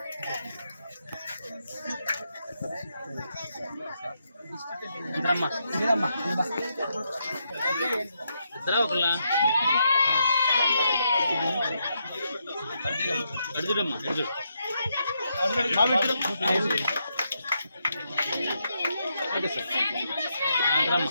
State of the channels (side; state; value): both; inverted; correlation -0.81